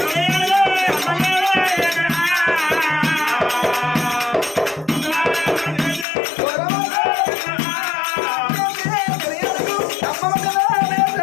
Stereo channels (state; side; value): drops out; right; at 6.1 s